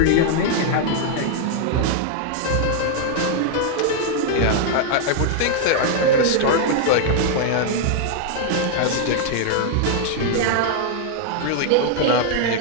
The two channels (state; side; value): different; both; correlation 0.00